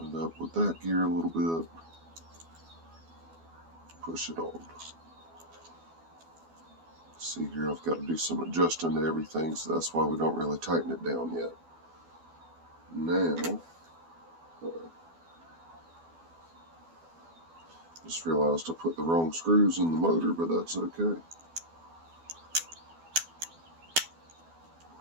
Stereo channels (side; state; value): left; late; 12 ms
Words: it up with that gear a little bit. Push it on. See here, I've got to do some adjusting to everything, so that's why we don't really tighten it down yet. Now, just realized I put the wrong screws in the motor, but that's okay.